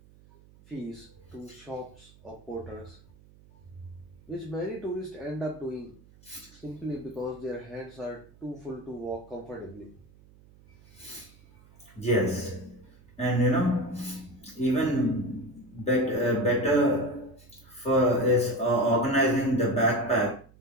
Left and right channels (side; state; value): right; noise; hum, 25 dB below the sound